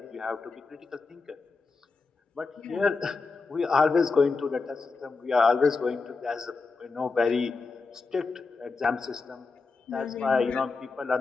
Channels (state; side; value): quieter; right; 4.2 dB